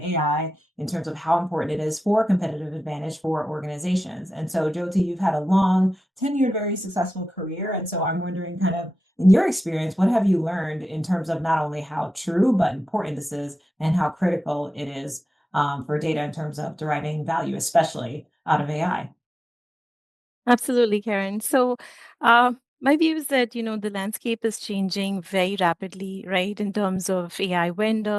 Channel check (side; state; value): both; normal; correlation 0.94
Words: in terms of how important it is for competitive advantage for organizations. And so, Jyoti, you've had a long, tenured, very successful career. And so I'm wondering, kind of, in your experience, what have you learned in terms of not only how true but important this is and how critical it is for data in terms of deriving value, especially out of AI. Absolutely, Karen. So, my view is that, the landscape is changing very rapidly, right, in terms of AI